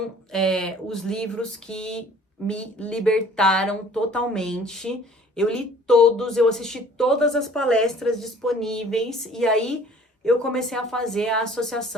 os livros que me libertaram totalmente. Eu li todos, eu assisti todas as palestras disponíveis e aí eu comecei a fazer a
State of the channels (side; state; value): both; normal; correlation 0.52